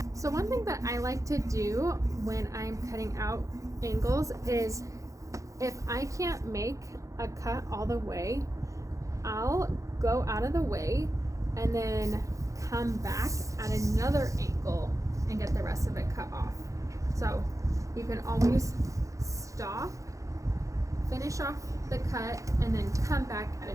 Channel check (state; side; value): late; left; 0.15 ms